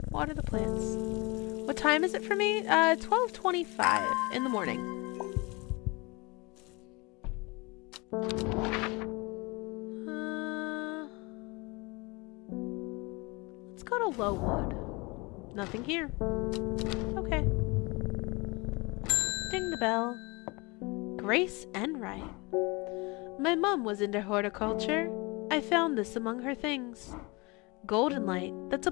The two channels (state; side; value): quieter; right; 26.3 dB